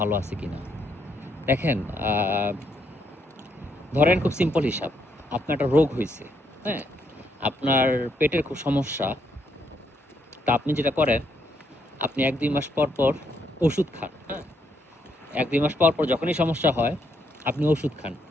আছে কি না। দেখেন, ধরেন খুব সিম্পল হিসাব, আপনার একটা রোগ হয়েছে। হ্যাঁ, আপনার পেটের খুব সমস্যা। তা আপনি যেটা করেন, আপনি 1-2 মাস পর পর ওষুধ খান। হ্যাঁ, 1-2 মাস পর পর যখনই সমস্যা হয় আপনি ওষুধ খান।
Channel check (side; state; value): both; normal; correlation 0.75